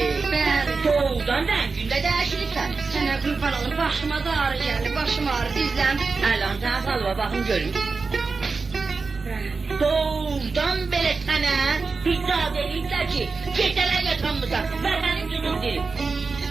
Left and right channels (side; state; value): left; quieter; 4.4 dB